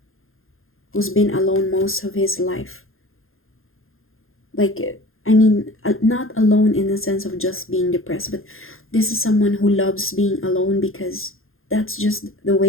who's been alone most of his life. Like, I mean, not alone in the sense of just being depressed, but this is someone who loves being alone because that's just the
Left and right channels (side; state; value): right; late; 0.60 ms